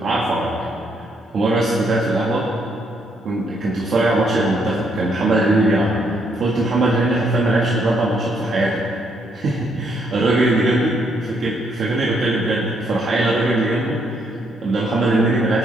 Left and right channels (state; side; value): normal; both; correlation 0.73